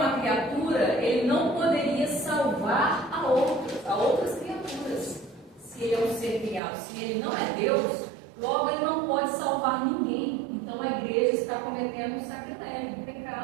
criatura, ele não poderia salvar a outras criaturas. Se ele é um ser criado, se ele não é Deus, logo ele não pode salvar ninguém. Então a igreja está cometendo um sacrilégio, um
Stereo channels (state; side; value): drops out; left; at 6.6 s